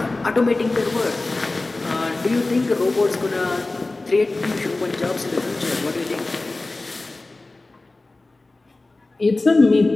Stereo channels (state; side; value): quieter; right; 3.1 dB